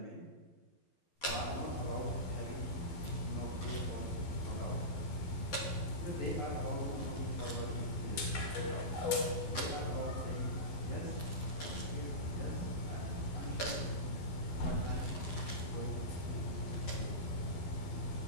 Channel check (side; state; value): right; late; 11 ms